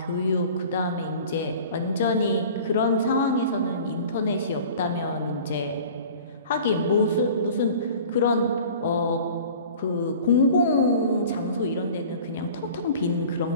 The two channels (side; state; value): both; inverted; correlation -0.43